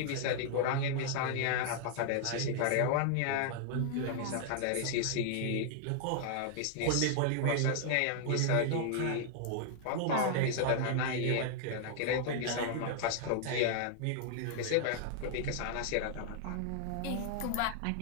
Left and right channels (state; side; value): different; both; correlation -0.01